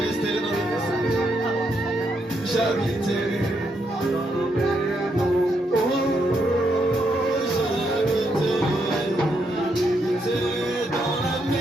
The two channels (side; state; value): both; normal; correlation 0.78